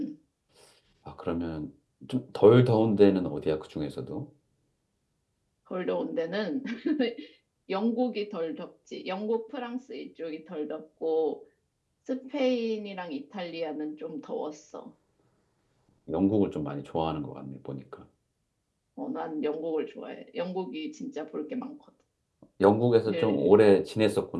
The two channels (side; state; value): both; identical; correlation 1.00